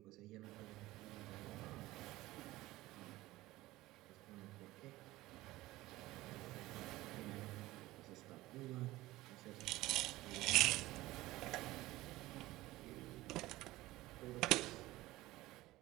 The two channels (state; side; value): quieter; left; 17.9 dB